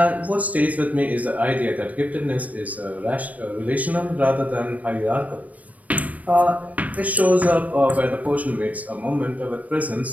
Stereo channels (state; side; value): late; left; 0.073 ms